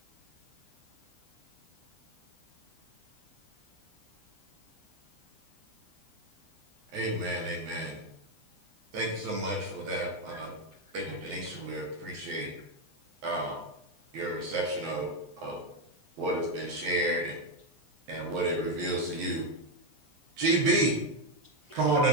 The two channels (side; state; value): left; late; 9.9 ms